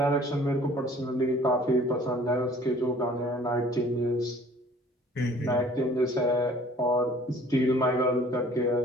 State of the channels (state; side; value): normal; both; correlation 0.52